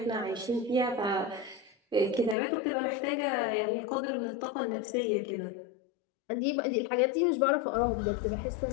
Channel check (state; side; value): drops out; right; at 2.4 s